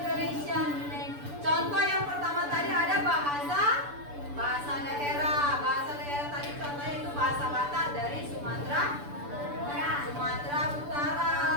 Contoh yang pertama tadi ada bahasa daerah. Bahasa daerah tadi contohnya itu bahasa Batak dari Sumatera Utara.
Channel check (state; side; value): late; left; 6.9 ms